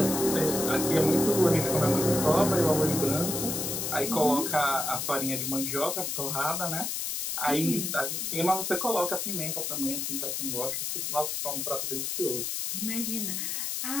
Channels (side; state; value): left; noise; hiss, 2 dB below the sound